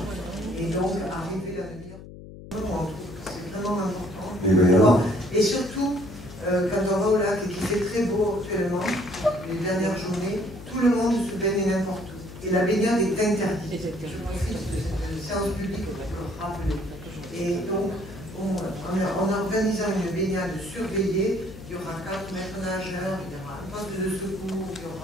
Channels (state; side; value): noise; left; hum, 15 dB below the sound